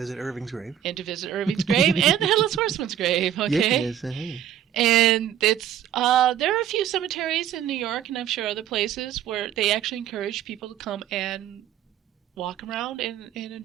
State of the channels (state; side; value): quieter; left; 10.4 dB